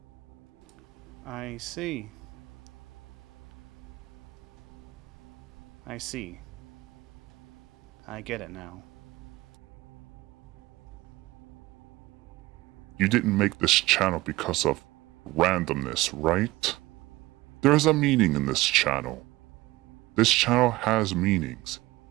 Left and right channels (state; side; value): quieter; left; 19.2 dB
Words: I see. I see. I get it now. You didn't make this channel because of randomness, right? There's a meaning in this channel. This channel has meanings.